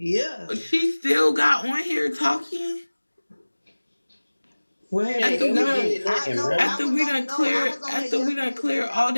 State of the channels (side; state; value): both; inverted; correlation -1.00